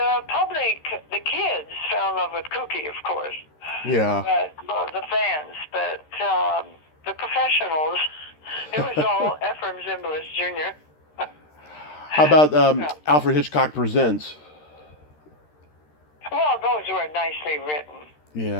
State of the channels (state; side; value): late; right; 13 ms